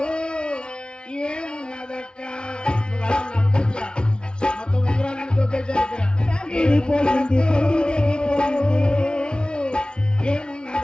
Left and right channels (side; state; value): right; late; 0.056 ms